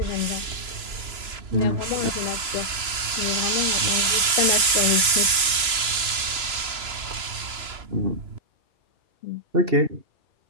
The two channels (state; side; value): late; left; 3.0 ms